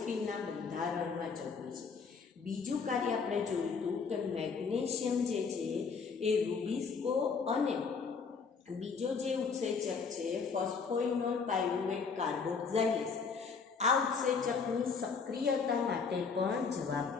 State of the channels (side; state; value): right; quieter; 5.3 dB